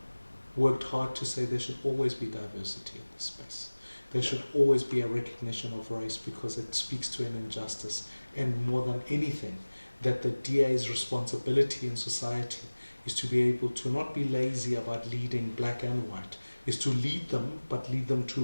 worked hard to say there should always be diversity in this space. There should always be a recognition of race, because it speaks to an injustice. And more than anything, that the DA's responsibility in society is to be able to not be lazy about leading black and white, is to lead them, but lead them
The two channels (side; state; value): both; inverted; correlation -1.00